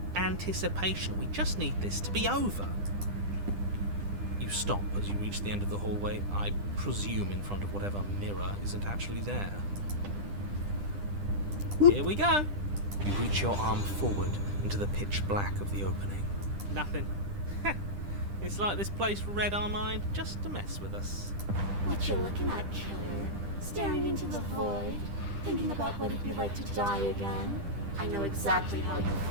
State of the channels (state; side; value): late; left; 10 ms